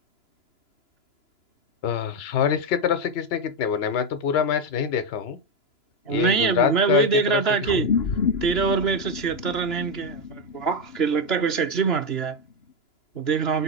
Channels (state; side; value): late; right; 2.9 ms